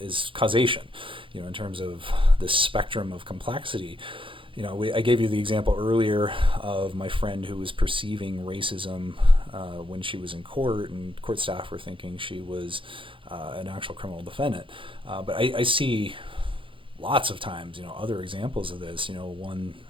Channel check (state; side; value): late; left; 0.25 ms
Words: causation. In terms of the spectrum of complexity. I gave you the example earlier of my friend who was perceiving racism when she was in court, and court staff were thinking she was an actual criminal defendant. But I see lots of times, other examples of this. One